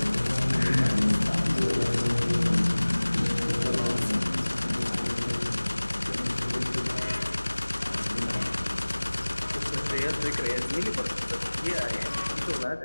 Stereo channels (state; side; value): inverted; both; correlation -1.00